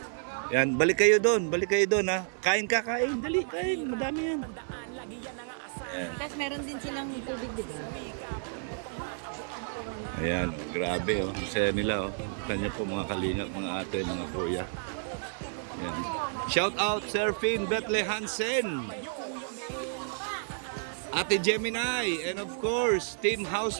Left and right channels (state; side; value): silent; left; 57 dB below the other